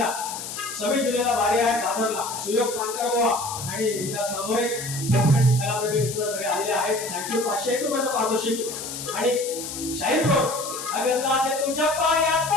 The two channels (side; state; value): left; noise; hiss, 8 dB below the sound